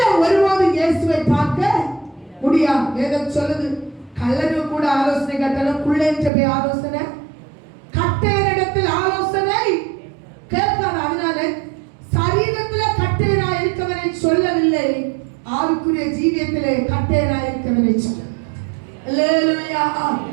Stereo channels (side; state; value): left; drops out; at 6.3 s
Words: ஒருவாது இயேசுவை பார்க்க முடியாது. வேதம் சொல்லுது, கள்ளனு கூட ஆலோசனை கேட்டாலும் குள்ள என்று ஆலோசனை கட்டையரிடத்தில் ஆலோசனை கேட்காது. அதனால சரீரத்துல கட்டையரா இருக்கவனை சொல்லவில்லை, ஆவிக்குரிய ஜீவியத்திலே கட்டையரா இருக்கவனை சொல்ல. அல்லேலூயா.